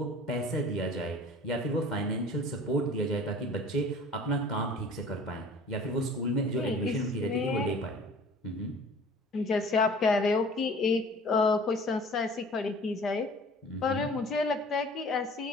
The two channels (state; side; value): normal; both; correlation 0.46